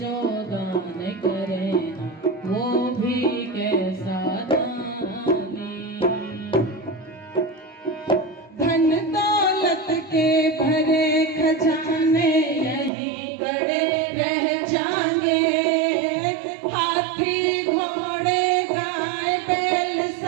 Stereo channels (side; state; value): left; drops out; at 12.9 s